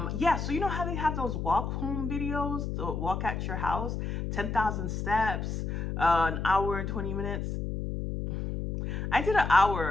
Yeah, so you know how they have those walk home videos, the walk at your house, 10,000 steps, an hour and 20 minutes. I did an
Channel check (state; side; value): noise; left; hum, 3 dB below the sound